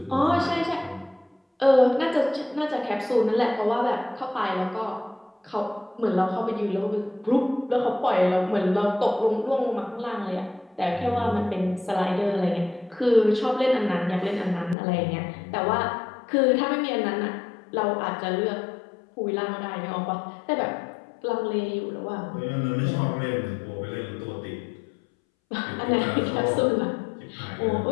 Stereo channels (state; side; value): drops out; right; at 14.8 s